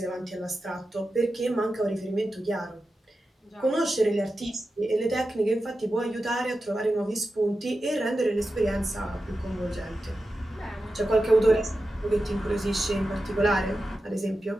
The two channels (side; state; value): both; normal; correlation 0.92